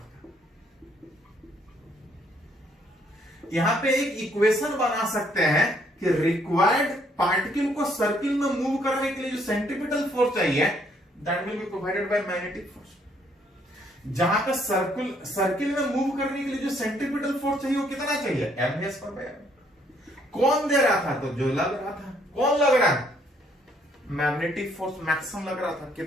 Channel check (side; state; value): both; normal; correlation 0.67